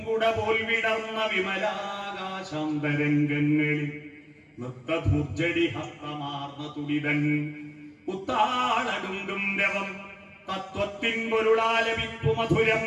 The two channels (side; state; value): both; identical; correlation 1.00